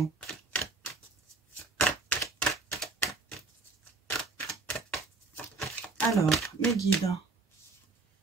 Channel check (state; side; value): quieter; left; 4.1 dB